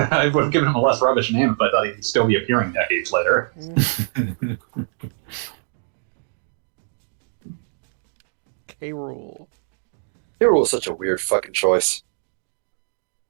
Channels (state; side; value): silent; left; digital silence